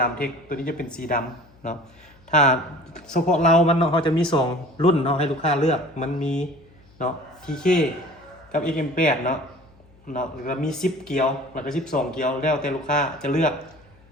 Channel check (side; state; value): left; noise; hum, 29 dB below the sound